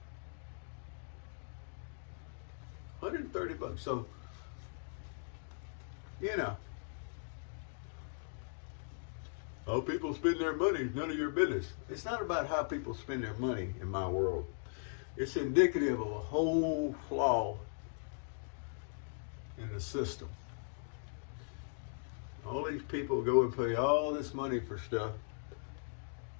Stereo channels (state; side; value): silent; right; digital silence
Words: $130. So, you know, how people spend their money is none of your business. It's not about how people spend their money in my world. It's indicative of a whole flaw in the system. All these people go and pay all this money for stuff,